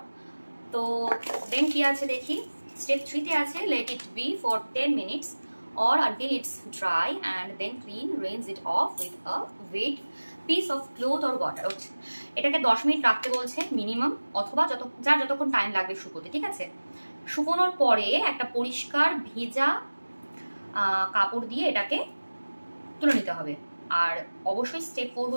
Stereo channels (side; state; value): both; inverted; correlation -1.00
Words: তো দেন কি আছে দেখি। স্টেপ 3 আছে let it be for 10 minutes or until it's dry and then clean, rinse it off with a wet piece of cloth or water. এটাকে 10 মিনিট রাখতে বলছে মিনিমাম, অথবা যতক্ষণ টাইম লাগবে শুকোতে। ঠিক আছে, শুকোনোর পরে একটা পরিষ্কার ভেজা কাপড় দিয়ে এটাকে তুলে নিতে হবে। আর অবশ্যই স্টেপ 4